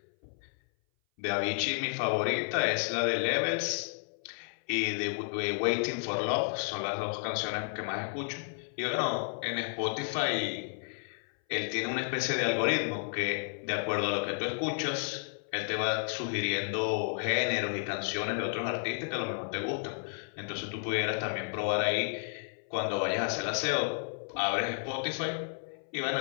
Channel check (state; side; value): silent; right; 56 dB below the other